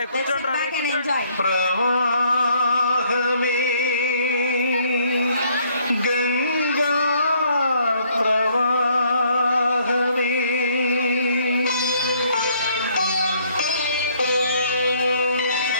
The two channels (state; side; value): inverted; both; correlation -0.65